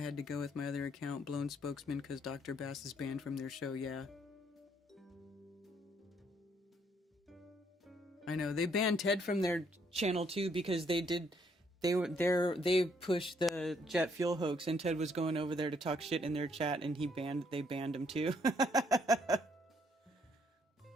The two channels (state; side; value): normal; both; correlation 0.69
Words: to go with my other account, Blown Spokesman, because Dr. Bass is banned from their show, yeah. I know, they banned Ted from their channel too, because they pushed the jet fuel hoax, and Ted was going over there to talk shit in their chat, and they banned him too.